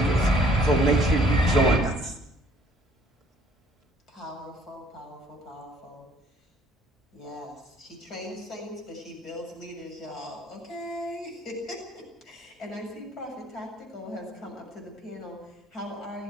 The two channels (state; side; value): normal; both; correlation 0.59